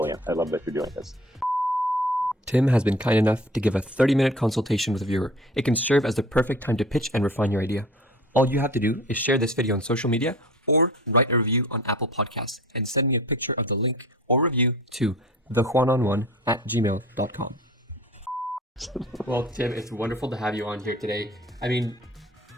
I love that you're doing this. Tim has been kind enough to give a 30-minute consultation with a viewer. It can serve as the perfect time to pitch and refine your idea. All you have to do is share this video on social media or write a review on Apple Podcasts and send me a picture of the link or review to thejuanonone@gmail.com. Well, Tim, it's wonderful to have you on here today. I mean,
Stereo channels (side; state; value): both; normal; correlation 0.42